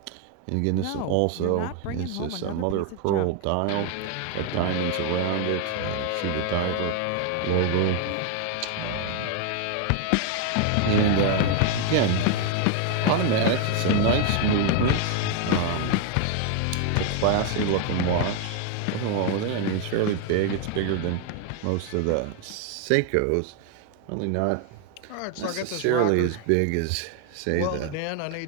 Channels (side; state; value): both; different; correlation 0.01